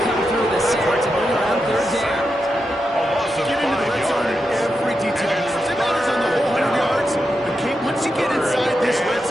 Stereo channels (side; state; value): both; normal; correlation 0.87